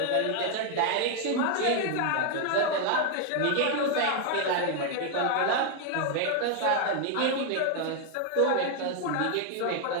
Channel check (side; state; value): both; different; correlation 0.00